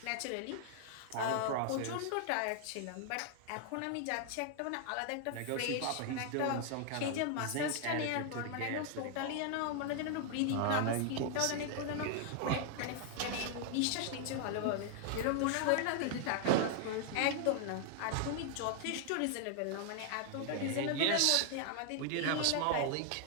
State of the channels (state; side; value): different; both; correlation 0.00